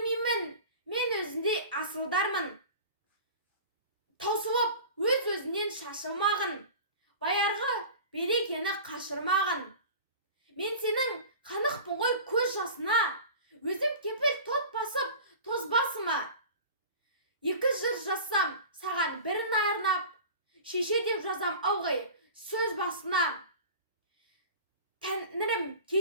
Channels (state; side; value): inverted; both; correlation -0.37